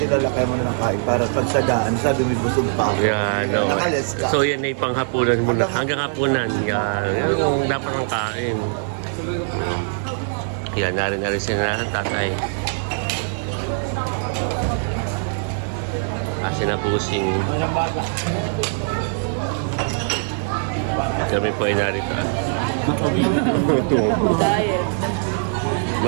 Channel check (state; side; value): silent; left; digital silence